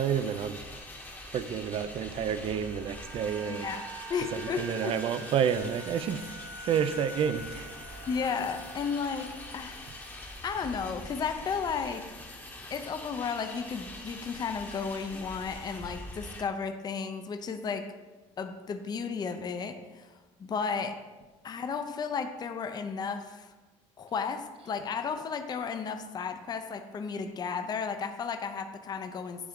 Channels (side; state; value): both; normal; correlation 0.38